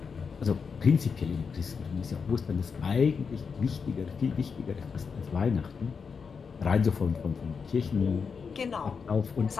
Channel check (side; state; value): right; quieter; 5.7 dB